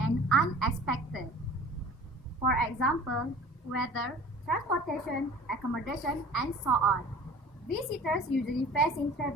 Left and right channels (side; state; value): both; normal; correlation 0.44